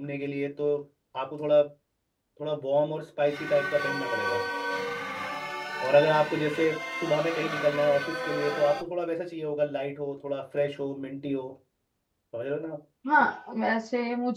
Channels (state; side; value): identical; both; correlation 1.00